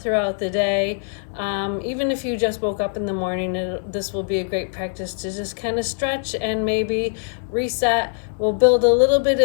throughout the day. Even if you just woke up in the morning, this will be a great practice to just kind of stretch and maybe reset. We'll build a little bit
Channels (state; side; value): silent; right; 64 dB below the other